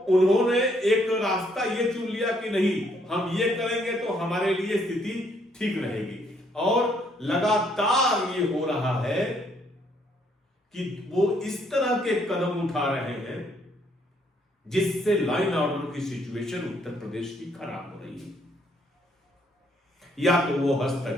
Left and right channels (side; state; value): both; normal; correlation 0.69